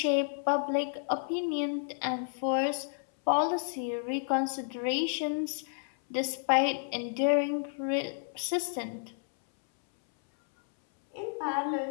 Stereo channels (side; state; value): right; silent; 57 dB below the other